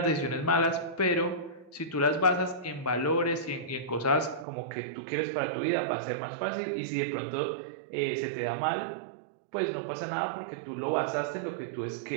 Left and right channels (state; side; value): drops out; left; at 4.5 s